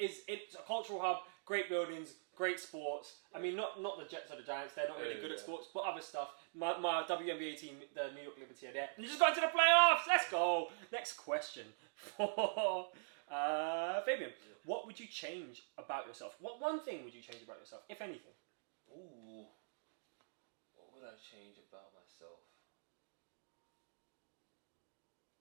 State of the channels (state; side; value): silent; left; digital silence